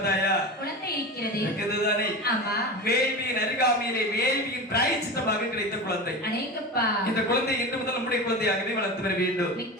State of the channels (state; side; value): normal; both; correlation 0.27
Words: குழந்தை இருக்கிறது. இருக்கிறதுதானே? ஆமா. வேள்வியின் அருகாமையிலே வேள்வியின் பிராயச்சித்தமாக கிடைத்த குழந்தை. அநேகப்பா, இந்த குழந்தை இன்று முதல் நம்முடைய குழந்தையாகவே வளர்த்து வர வேண்டும். மிக்க